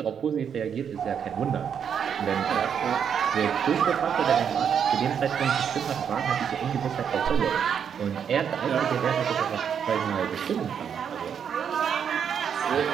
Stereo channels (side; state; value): left; quieter; 7.7 dB